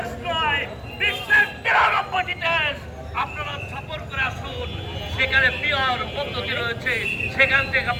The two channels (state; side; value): identical; both; correlation 1.00